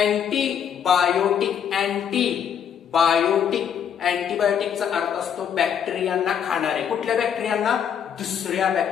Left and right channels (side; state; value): right; quieter; 8.3 dB